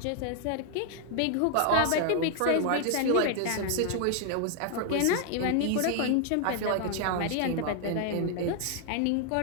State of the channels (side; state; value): both; different; correlation 0.00